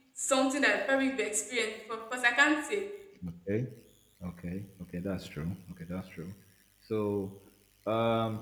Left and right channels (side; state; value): both; identical; correlation 1.00